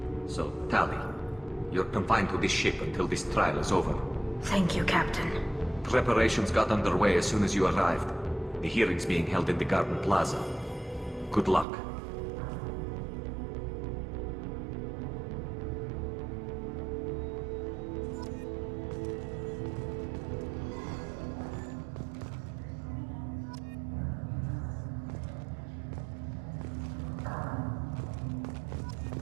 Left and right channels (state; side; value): drops out; left; at 11.7 s